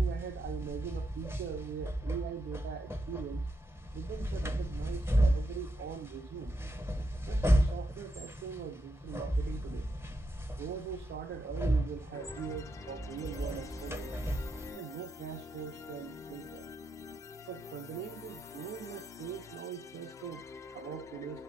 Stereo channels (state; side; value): normal; both; correlation 0.82